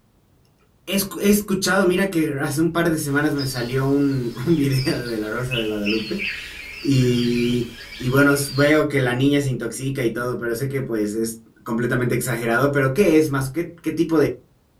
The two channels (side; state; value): both; identical; correlation 1.00